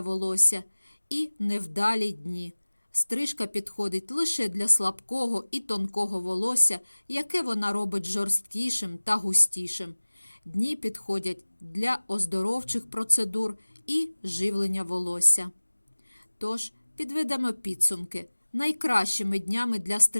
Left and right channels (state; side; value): inverted; both; correlation -1.00